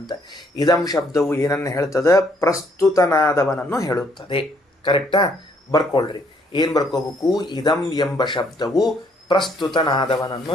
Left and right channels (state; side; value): normal; both; correlation 0.67